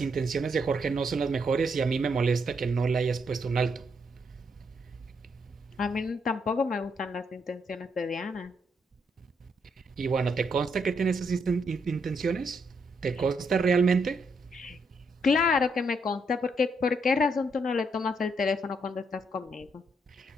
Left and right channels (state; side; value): normal; both; correlation 0.76